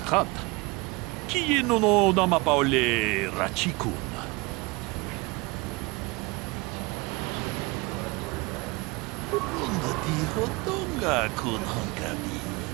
Kieno no namapaole rachikun. Runga tiho donga kun hongabi.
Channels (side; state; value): left; quieter; 25.7 dB